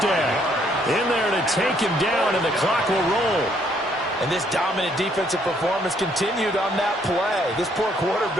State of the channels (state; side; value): normal; both; correlation 0.68